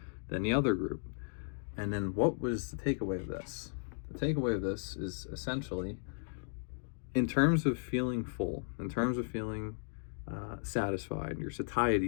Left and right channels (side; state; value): right; silent; digital silence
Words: than the other group. And then what was the takeaway of this? The takeaway of this is essentially, in terms of feeling full, in terms of feeling satisfied, your